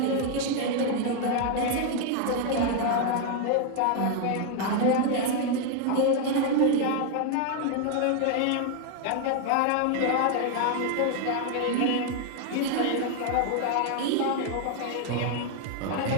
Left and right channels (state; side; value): different; both; correlation 0.00